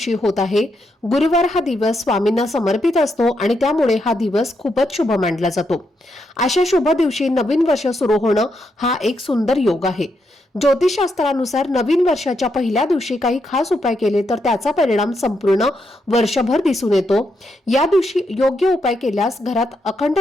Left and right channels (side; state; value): both; normal; correlation 0.81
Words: होत आहे। गुरुवार हा दिवस स्वामींना समर्पित असतो आणि त्यामुळे हा दिवस खूपच शुभ मानला जातो। अशा शुभ दिवशी नवीन वर्ष सुरू होणं हा एक सुंदर योग आहे। ज्योतिषशास्त्रानुसार नवीन वर्षाच्या पहिल्या दिवशी काही खास उपाय केले तर त्याचा परिणाम संपूर्ण वर्षभर दिसून येतो। या दिवशी योग्य उपाय केल्यास घरात अखंड